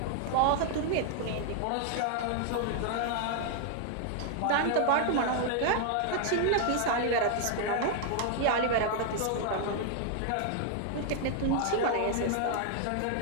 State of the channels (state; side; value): different; both; correlation 0.00